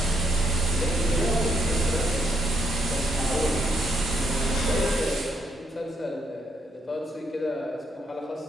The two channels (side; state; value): both; normal; correlation 0.76